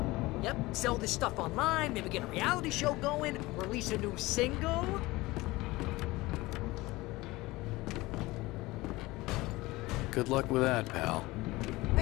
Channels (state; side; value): quieter; right; 20.3 dB